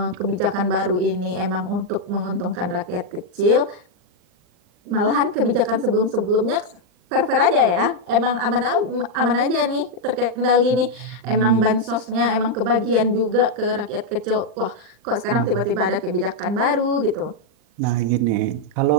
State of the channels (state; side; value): late; left; 39 ms